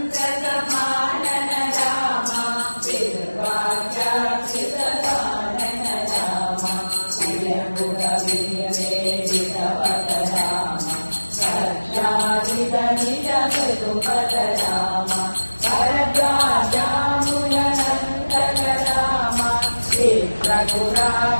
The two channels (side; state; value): both; inverted; correlation -1.00